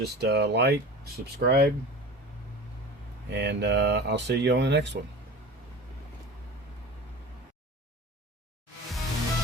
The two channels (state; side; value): normal; both; correlation 0.35